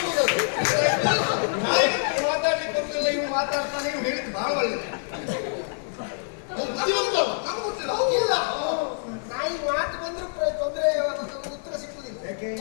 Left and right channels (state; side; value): silent; right; digital silence